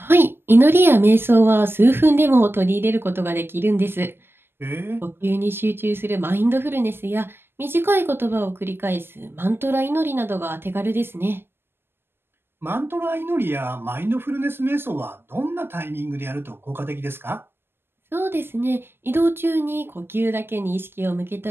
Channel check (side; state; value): left; late; 0.11 ms